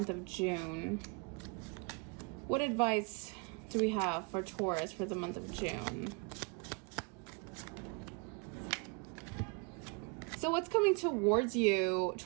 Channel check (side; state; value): left; quieter; 32.4 dB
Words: of June? What advice do we have for Taurus for the month of June? So what's coming towards you,